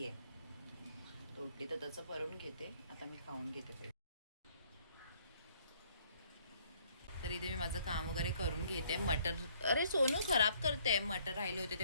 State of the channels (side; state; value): both; inverted; correlation -0.63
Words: आहे, तर उठली तर त्याचं भरून घेते. आता मी खाऊन घेते पहिले. तर इथे मी माझं काम वगैरे करून घेते. मटर, अरे सोनू खराब करते. मटर राहिले होते ते